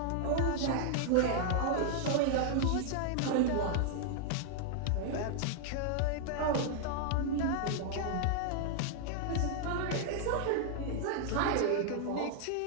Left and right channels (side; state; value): both; different; correlation 0.00